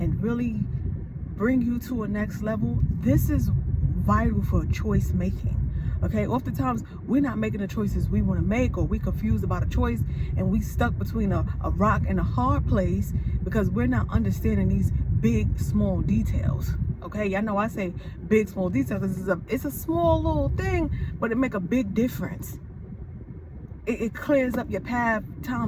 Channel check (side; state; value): both; identical; correlation 1.00